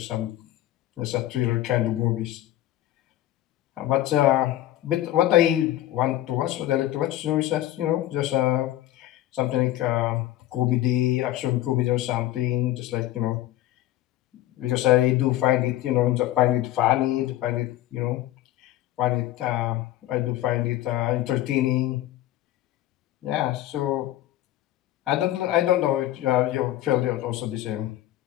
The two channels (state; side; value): quieter; right; 14.4 dB